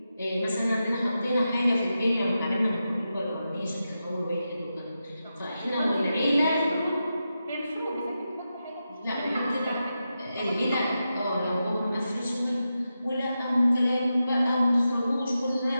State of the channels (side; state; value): both; inverted; correlation -0.89